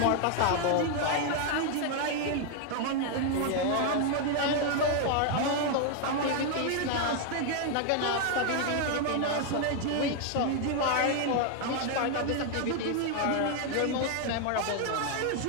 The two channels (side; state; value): both; different; correlation 0.00